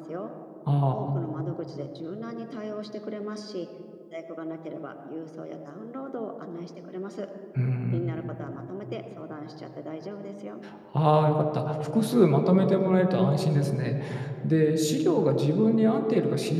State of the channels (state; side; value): identical; both; correlation 1.00